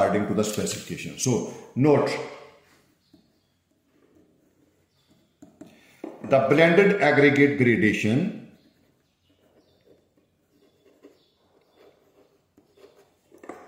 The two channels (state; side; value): identical; both; correlation 1.00